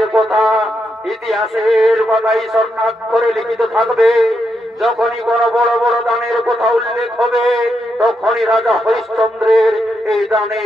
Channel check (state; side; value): normal; both; correlation 0.82